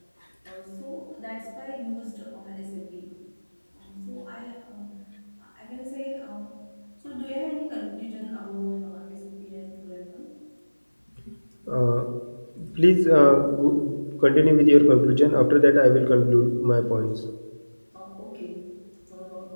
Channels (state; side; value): inverted; both; correlation -1.00